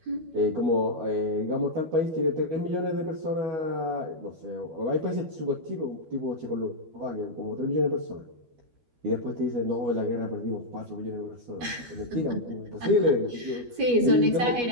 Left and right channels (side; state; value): left; late; 12 ms